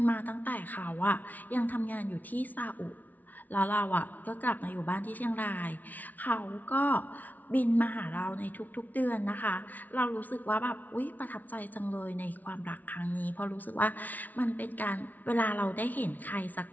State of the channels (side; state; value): right; late; 0.078 ms